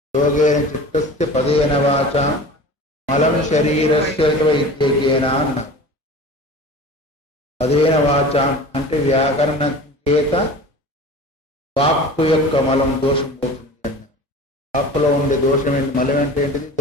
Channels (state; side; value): normal; both; correlation 0.38